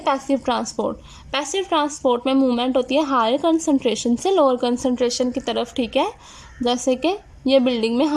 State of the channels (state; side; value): identical; both; correlation 1.00